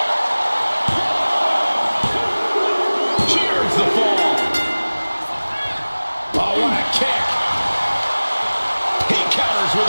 Here's the fall. Oh, what a kick. He counters with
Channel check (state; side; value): inverted; both; correlation -1.00